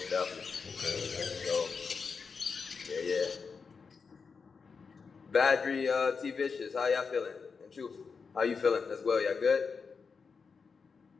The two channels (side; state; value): right; quieter; 5.3 dB